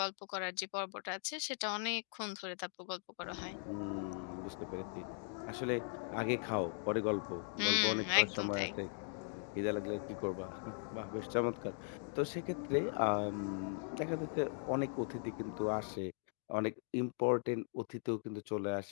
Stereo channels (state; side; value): silent; right; 51 dB below the other